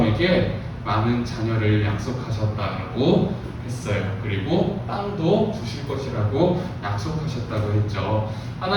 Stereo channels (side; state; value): both; identical; correlation 1.00